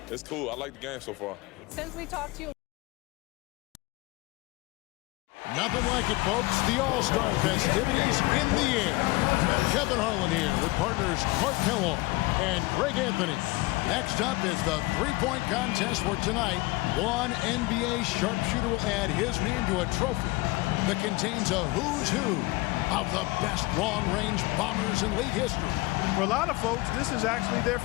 it's cool. I like the game so far. Since we talked to you. Nothing like it, folks. The All-Star festivities in the air. Kevin Harlan here with partners Clark Kellogg and Greg Anthony. Next up is the three-point contest for tonight. One NBA sharpshooter will add his name to a trophy that contains a who's who of the best long-range bombers in league history. For a lot of folks, this is actually their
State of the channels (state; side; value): quieter; right; 22.2 dB